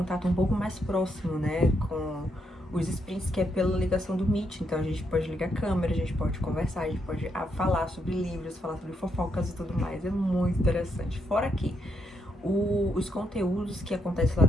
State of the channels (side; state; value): both; normal; correlation 0.78